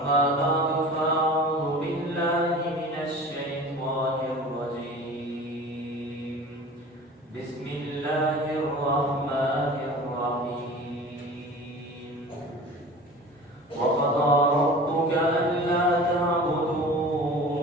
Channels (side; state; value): both; normal; correlation 0.39